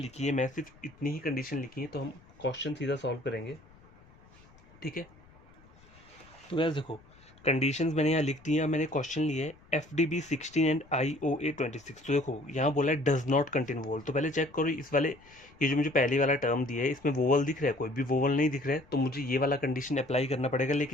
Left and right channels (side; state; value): left; noise; rumble, 26 dB below the sound